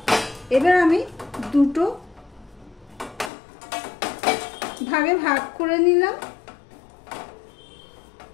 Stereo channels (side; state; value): right; drops out; at 3.3 s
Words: এবার আমি 2 ভাগে ভাগ করে নিলাম।